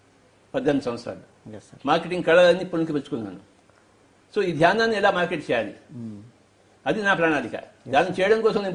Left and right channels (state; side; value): identical; both; correlation 1.00